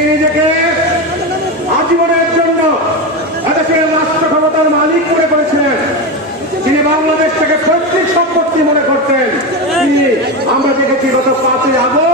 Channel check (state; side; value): normal; both; correlation 0.16